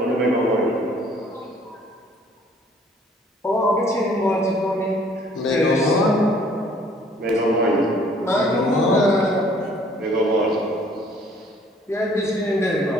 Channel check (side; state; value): both; normal; correlation 0.58